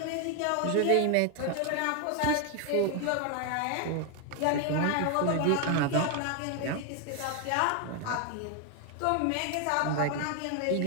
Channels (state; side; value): different; both; correlation 0.01